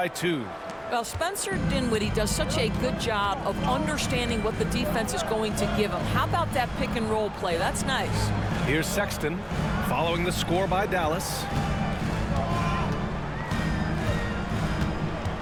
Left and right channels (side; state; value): both; identical; correlation 1.00